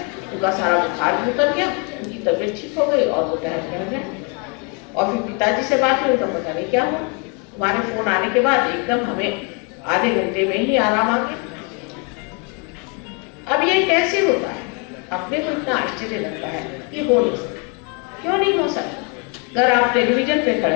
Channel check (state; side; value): quieter; right; 34.7 dB